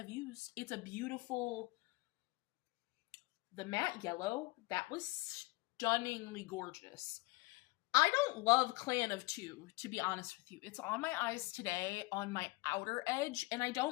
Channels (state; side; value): quieter; right; 23.6 dB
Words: used, it's a beautiful... The matte yellow, that was stunningly gorgeous. I don't love Clan of Two, to be honest with you. It's on my eyes today, on my outer edge, and I